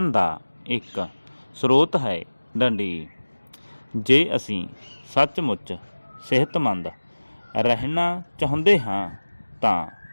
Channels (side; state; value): both; inverted; correlation -1.00